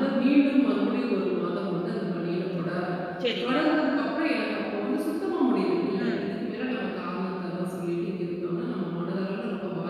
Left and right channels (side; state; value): both; identical; correlation 1.00